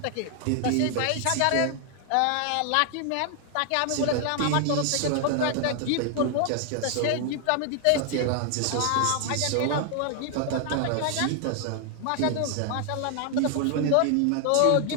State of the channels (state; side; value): different; both; correlation 0.00